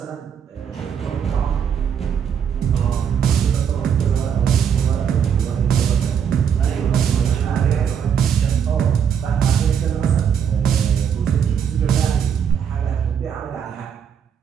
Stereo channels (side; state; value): left; quieter; 7.8 dB